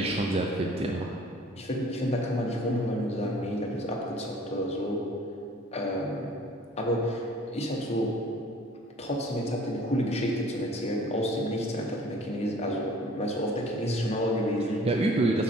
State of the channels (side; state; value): both; normal; correlation 0.51